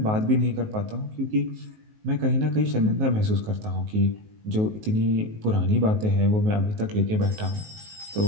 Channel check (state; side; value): late; left; 19 ms